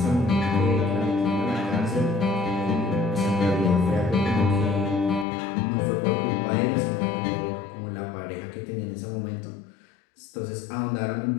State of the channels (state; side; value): drops out; right; at 5.2 s